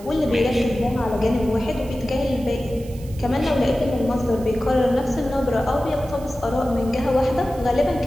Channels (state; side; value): noise; right; hiss, 22 dB below the sound